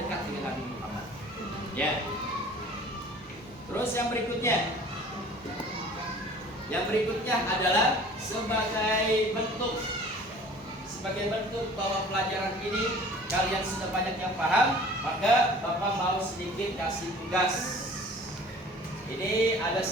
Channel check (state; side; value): normal; both; correlation 0.47